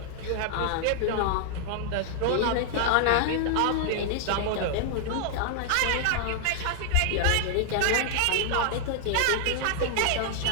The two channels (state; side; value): different; both; correlation -0.01